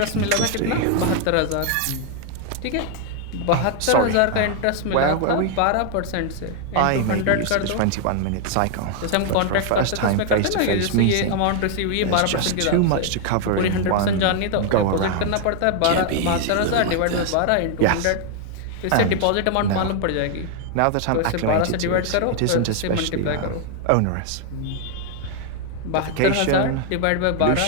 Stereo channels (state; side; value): different; both; correlation 0.00